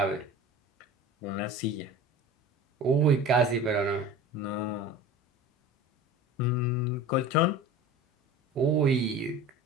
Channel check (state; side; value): normal; both; correlation 0.37